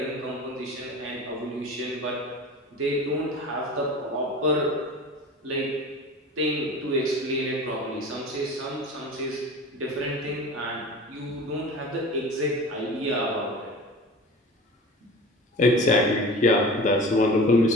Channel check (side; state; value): both; normal; correlation 0.36